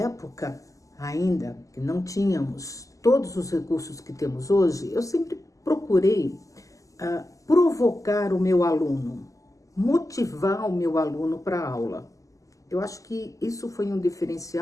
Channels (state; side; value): late; right; 0.16 ms